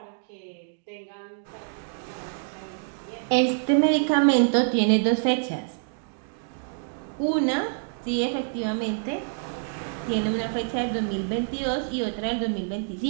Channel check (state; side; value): silent; left; digital silence